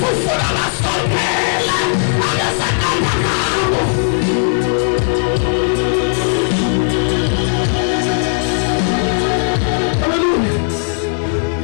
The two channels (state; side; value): silent; right; 69 dB below the other